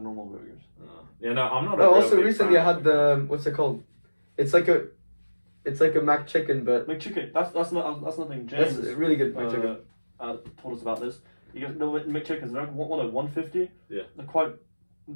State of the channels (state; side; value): inverted; both; correlation -1.00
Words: normal burgers. Yeah, no, I'm not. A Oh, real also big recently I fan. had the what's it called? It's like a Mac chicken, but McChicken. That's nothing. that's James really good Mac chicken. told us about this. You guys know McChickens. They're like 150. Yeah. They're quite